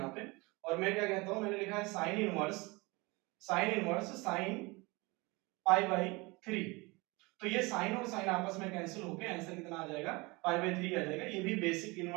पे, और मैं क्या कहता हूं, मैंने लिखा है साइन इनवर्स साइन π/3। तो ये साइन और साइन आपस में कैंसिल होके आंसर कितना आ जाएगा, π/3 आ जाएगा। ये भी बेसिक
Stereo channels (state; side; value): quieter; left; 25.2 dB